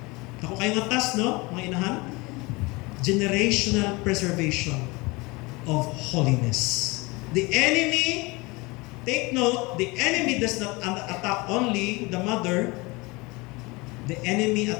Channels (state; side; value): quieter; right; 24.7 dB